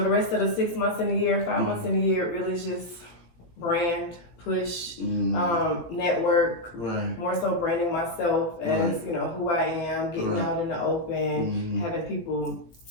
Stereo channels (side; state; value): right; late; 18 ms